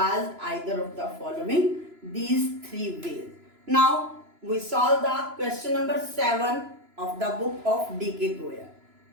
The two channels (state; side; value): late; left; 3.0 ms